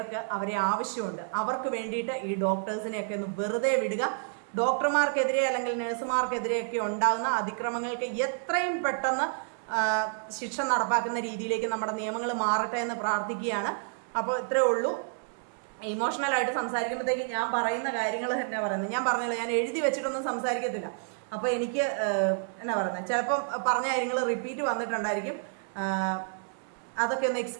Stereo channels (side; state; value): left; silent; 58 dB below the other